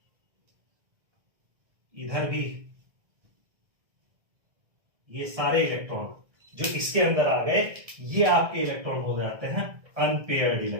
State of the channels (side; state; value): left; late; 1.6 ms